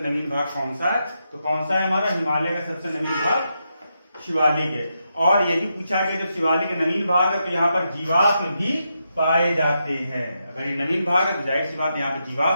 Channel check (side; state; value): both; inverted; correlation -0.84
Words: भाग कौन सा है? तो कौन सा है हमारा? हिमालय का सबसे नवीन भाग शिवालिक है। और ये भी पूछा गया जब शिवालिक का नवीन भाग है तो यहाँ पर जीवाश्म भी पाए जाते हैं। अगर ये नवीन भाग है तो जाहिर सी बात यहाँ पे